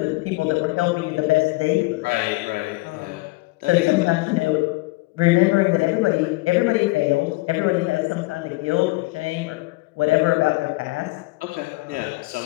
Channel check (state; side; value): quieter; right; 23.1 dB